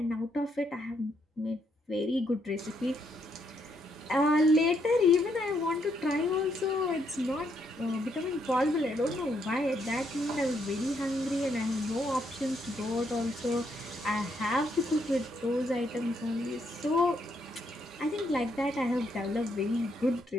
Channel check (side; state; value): both; normal; correlation 0.75